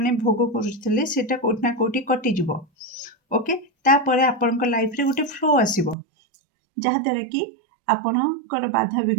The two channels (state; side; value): drops out; left; at 6.0 s